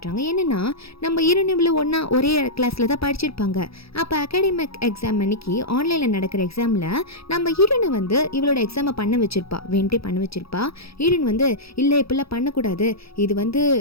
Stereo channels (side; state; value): right; late; 0.77 ms